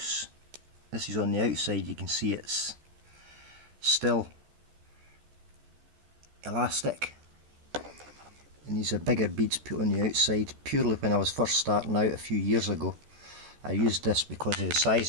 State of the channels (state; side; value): late; left; 14 ms